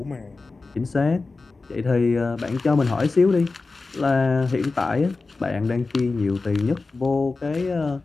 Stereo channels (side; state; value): right; quieter; 3.8 dB